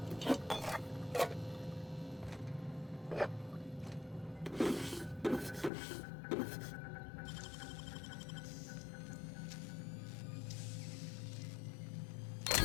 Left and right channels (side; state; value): right; drops out; at 5.7 s